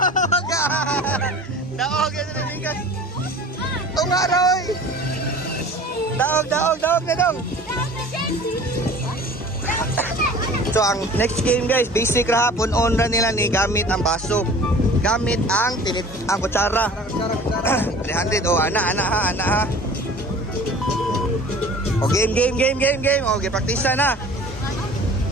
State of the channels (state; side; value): normal; both; correlation 0.44